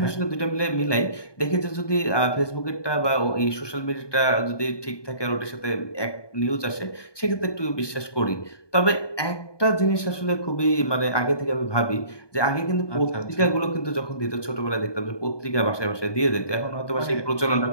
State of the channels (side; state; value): right; late; 1.2 ms